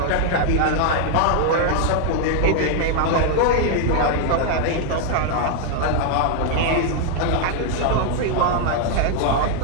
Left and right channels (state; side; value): different; both; correlation 0.00